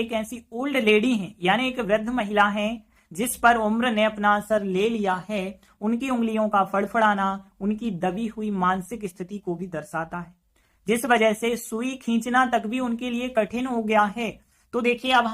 ऐसी ओल्ड लेडी हैं, यानी एक वृद्ध महिला है जिस पर उम्र ने अपना असर ले लिया है। उनकी उंगलियों का फड़फड़ाना उनकी दबी हुई मानसिक स्थिति को भी दर्शाता है, जिस वजह से सुई खींचना तक भी उनके लिए कठिन हो गया है। तो देखिए अब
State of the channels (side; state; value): both; identical; correlation 1.00